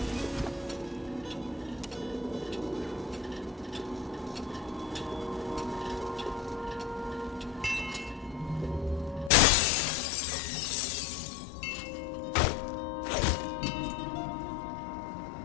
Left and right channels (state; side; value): drops out; right; at 9.3 s